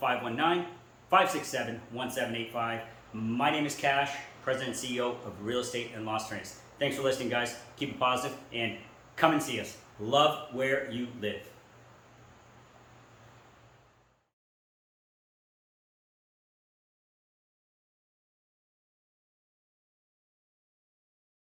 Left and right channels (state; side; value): identical; both; correlation 1.00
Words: 1-519-567-1785. My name is Kash, President and CEO of Real Estate in Las Terrenas. Thanks for listening, guys. Keep it positive and come and see us. Love where you live.